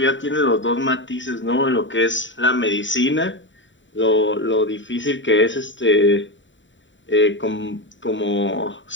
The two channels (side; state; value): right; late; 0.54 ms